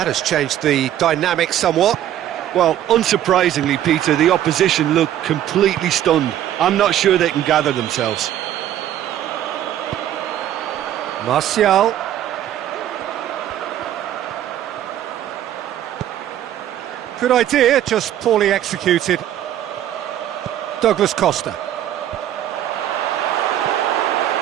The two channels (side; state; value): left; quieter; 11.6 dB